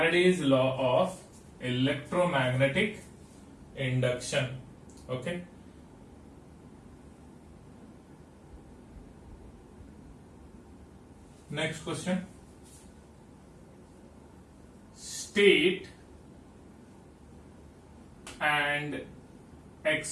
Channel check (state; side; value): identical; both; correlation 1.00